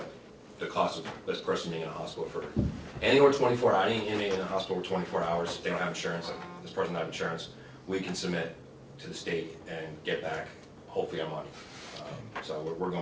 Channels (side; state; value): both; identical; correlation 1.00